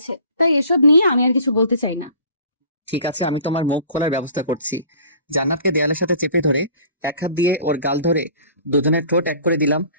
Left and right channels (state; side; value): inverted; both; correlation -0.48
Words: তাই এসব নিয়ে আমি আর কিছু বলতে চাই না। ঠিক আছে, আমি তোমার মুখ খোলার ব্যবস্থা করছি। জান্নাতকে দেয়ালের সাথে চেপে ধরে এক হাত দিয়ে ওর গাল ধরে দুজনের ঠোঁট এক করে দিলাম।